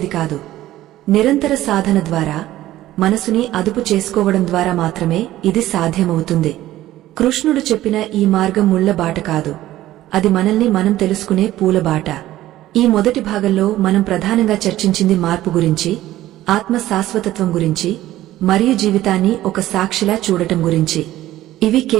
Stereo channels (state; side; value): quieter; left; 14.8 dB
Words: కాదు. నిరంతర సాధన ద్వారా, మనసుని అదుపు చేసుకోవడం ద్వారా మాత్రమే ఇది సాధ్యమవుతుంది. కృష్ణుడు చెప్పిన ఈ మార్గం ముళ్ల బాట కాదు, అది మనల్ని మనం తెలుసుకునే పూలబాట. ఈ మొదటి భాగంలో మనం ప్రధానంగా చర్చించింది మార్పు గురించి, ఆత్మ శాశ్వతత్వం గురించి మరియు జీవితాన్ని ఒక సాక్షిలా చూడటం గురించి. ఇవి